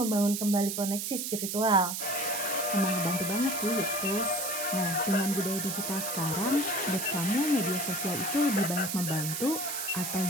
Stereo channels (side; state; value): right; noise; hiss, 3 dB below the sound